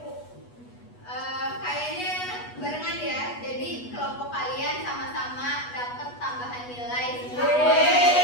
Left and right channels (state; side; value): late; right; 8.2 ms